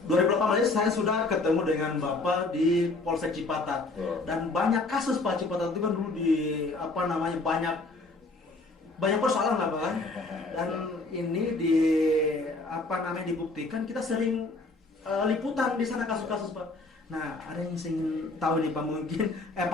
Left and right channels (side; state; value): right; quieter; 3.3 dB